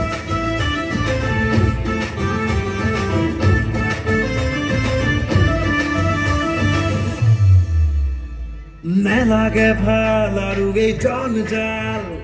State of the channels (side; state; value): both; identical; correlation 1.00